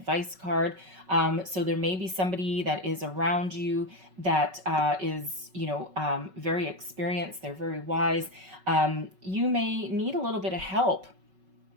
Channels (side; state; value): left; late; 5.3 ms